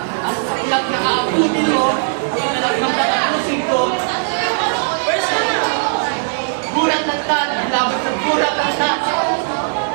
at sa ilang nakaabutin mo, at ng patapusin ko, gulat ng tat, laban sa gulat ng tat.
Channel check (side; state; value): left; silent; digital silence